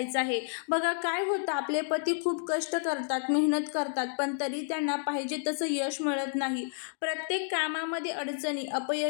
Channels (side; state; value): right; silent; digital silence